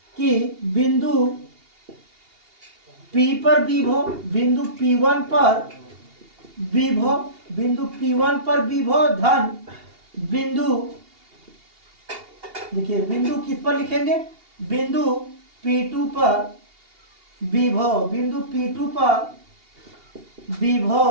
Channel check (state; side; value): late; left; 2.8 ms